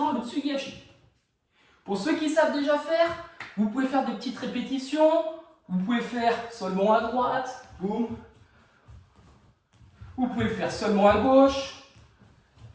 le tsugi-hachi. Pour ceux qui savent déjà faire, vous pouvez faire des petites répétitions. Vous pouvez faire seulement à droite, boum. Vous pouvez le faire seulement à gauche.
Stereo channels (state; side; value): identical; both; correlation 1.00